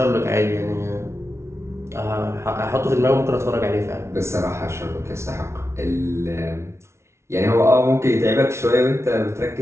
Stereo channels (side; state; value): left; late; 0.13 ms